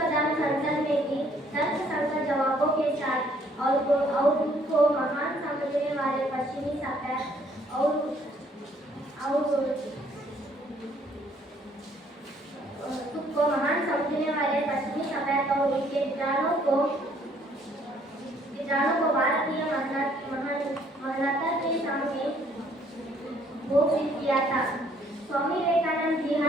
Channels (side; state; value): both; normal; correlation 0.63